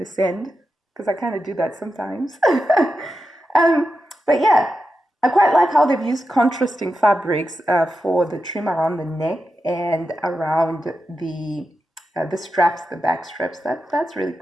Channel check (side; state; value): both; normal; correlation 0.89